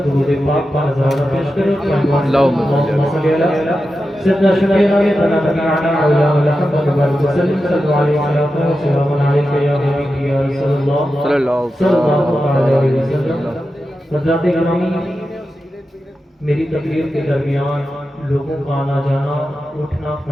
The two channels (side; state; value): both; normal; correlation 0.91